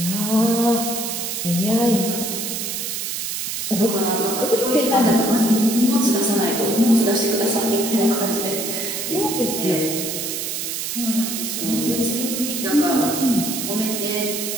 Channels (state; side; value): noise; right; hiss, 3 dB below the sound